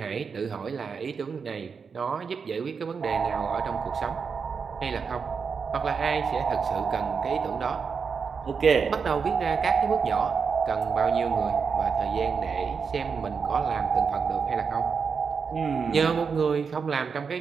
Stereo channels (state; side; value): quieter; left; 5.8 dB